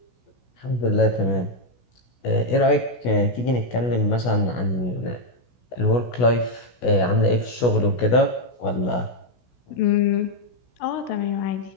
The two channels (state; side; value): late; right; 16 ms